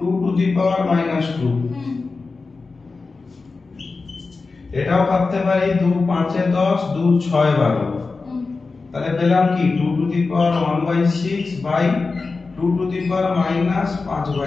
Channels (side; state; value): right; quieter; 4.1 dB